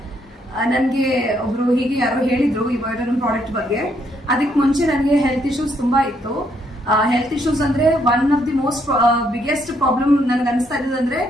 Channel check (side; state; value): both; normal; correlation 0.72